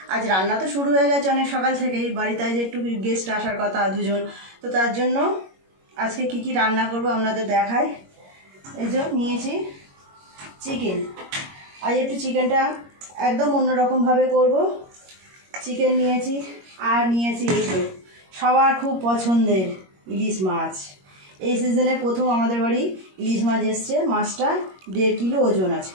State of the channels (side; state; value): left; late; 21 ms